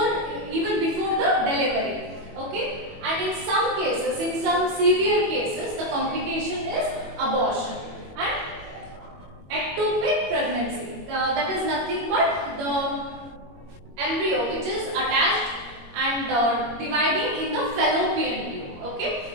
before the delivery. Okay, and in some cases, in some severe cases, the complication is abortion and ectopic pregnancy. That is nothing but the embryo which is attached and dividing in the fallopian tube.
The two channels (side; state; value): left; late; 21 ms